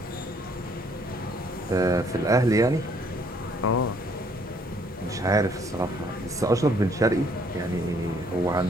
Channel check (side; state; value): both; normal; correlation 0.64